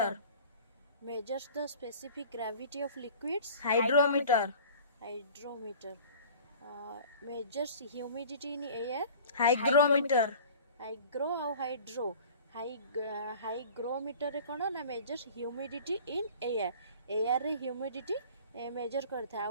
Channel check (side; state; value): both; inverted; correlation -0.44